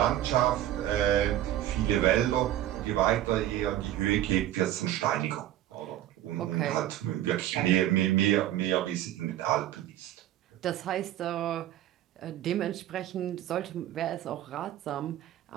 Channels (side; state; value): left; quieter; 12.9 dB